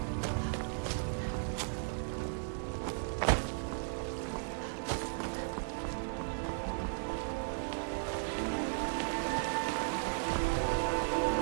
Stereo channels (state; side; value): silent; left; 54 dB below the other